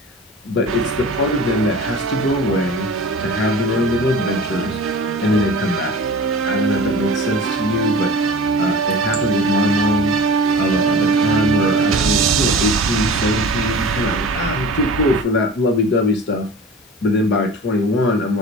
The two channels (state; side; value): noise; left; hiss, 30 dB below the sound